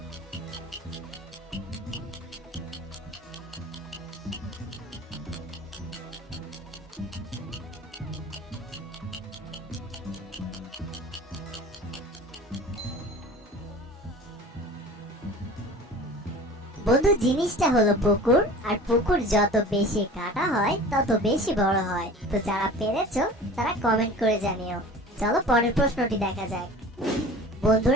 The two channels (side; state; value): both; normal; correlation 0.41